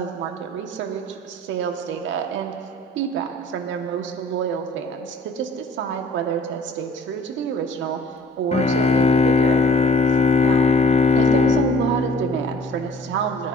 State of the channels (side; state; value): both; normal; correlation 0.50